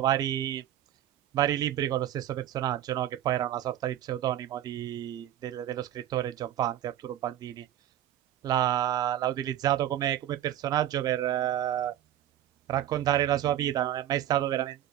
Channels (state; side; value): quieter; left; 11.9 dB